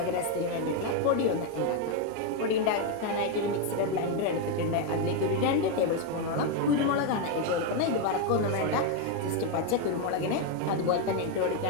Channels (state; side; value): different; both; correlation 0.02